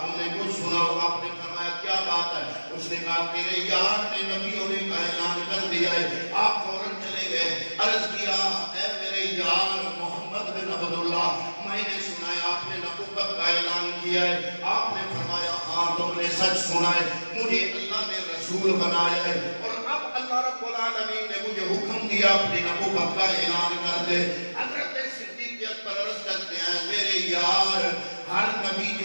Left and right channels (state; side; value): inverted; both; correlation -1.00